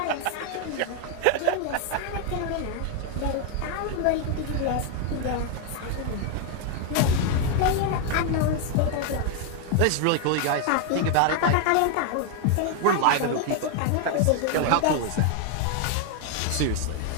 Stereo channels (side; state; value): both; different; correlation 0.00